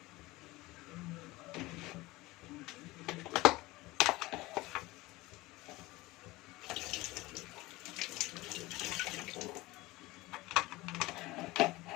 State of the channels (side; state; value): right; quieter; 20.4 dB